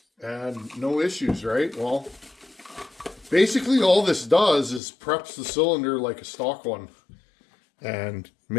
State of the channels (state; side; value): drops out; right; at 4.8 s